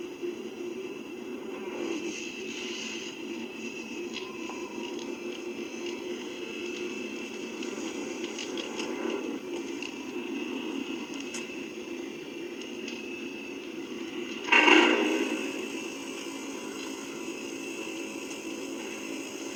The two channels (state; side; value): identical; both; correlation 1.00